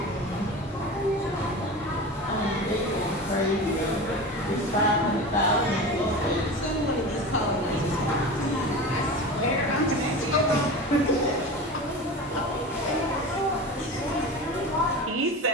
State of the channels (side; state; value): both; normal; correlation 0.30